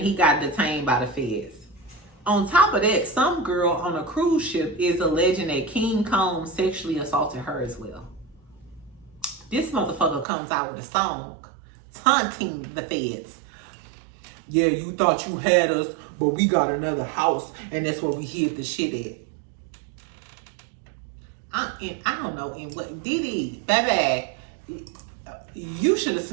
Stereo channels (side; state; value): left; drops out; at 10.2 s